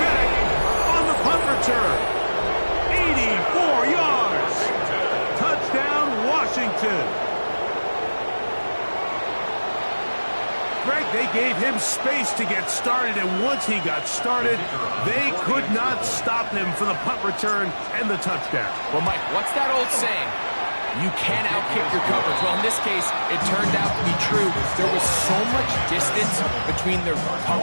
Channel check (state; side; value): inverted; both; correlation -1.00